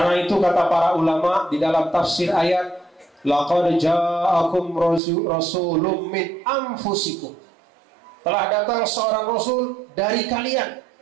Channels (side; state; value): left; drops out; at 5.0 s